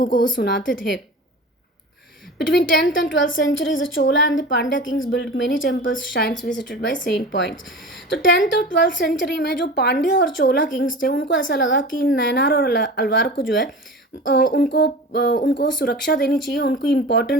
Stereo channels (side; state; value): both; normal; correlation 0.34